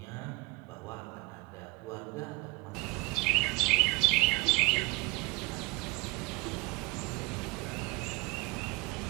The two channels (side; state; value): left; quieter; 26.9 dB